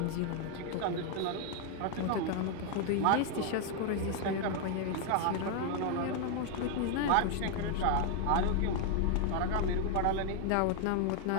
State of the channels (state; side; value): different; both; correlation 0.00